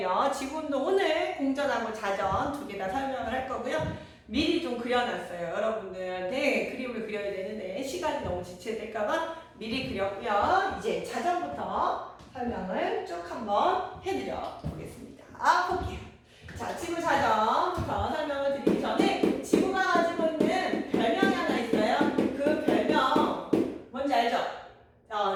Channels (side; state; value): both; identical; correlation 1.00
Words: 지구운동 오늘 공전하고 자전 두 개 다 설명을 할 거고요. 미리 좀 그려놨어요. 여러분들한테 그림을 그려야 되는데 시간이 너무 지체될까봐 미리 그렸고요. 이제 자전부터 설명을 쭉 한번 해드려 보겠습니다. 볼게요. 자, 지구 자전부터 설명을 드리기 전에 지구가 가지고 있는 별명이 하나 있어요. 그 별명 뭔지 알죠?